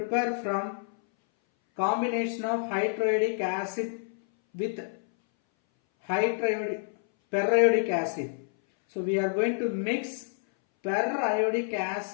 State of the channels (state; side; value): silent; right; 58 dB below the other